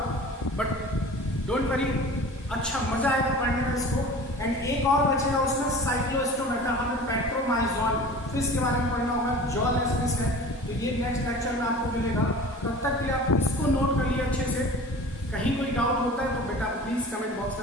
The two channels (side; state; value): both; normal; correlation 0.40